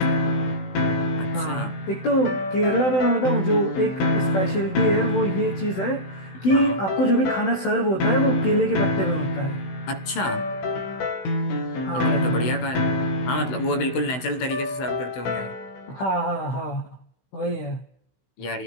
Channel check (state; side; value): late; right; 16 ms